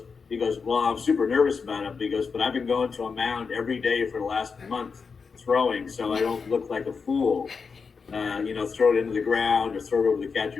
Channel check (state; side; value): quieter; right; 5.3 dB